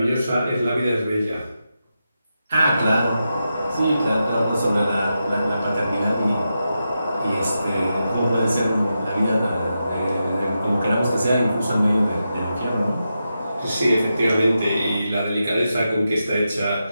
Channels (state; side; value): inverted; both; correlation -0.88